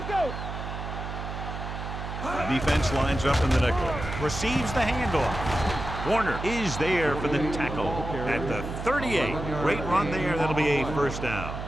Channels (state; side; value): noise; right; hum, 7 dB below the sound